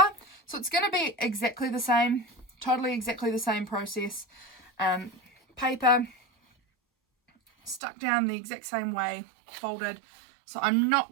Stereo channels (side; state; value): left; drops out; at 7.8 s